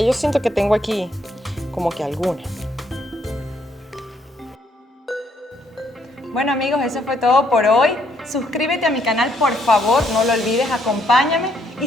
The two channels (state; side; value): normal; both; correlation 0.71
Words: siento que tengo aquí como que algunas. Bueno amigos, eso fue todo por hoy. Suscríbete a mi canal, por favor, no lo olvides, acompáñame. Y